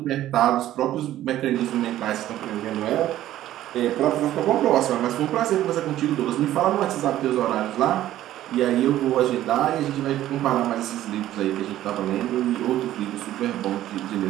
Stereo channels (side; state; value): left; quieter; 13.4 dB